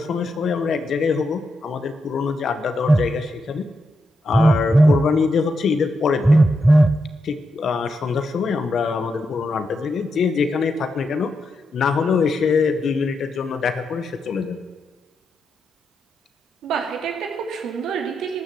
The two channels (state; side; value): normal; both; correlation 0.84